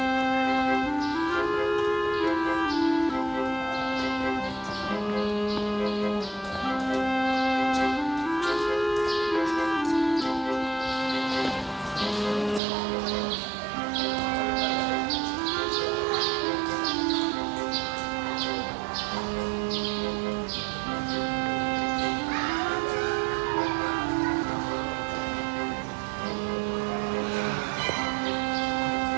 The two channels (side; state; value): left; drops out; at 12.6 s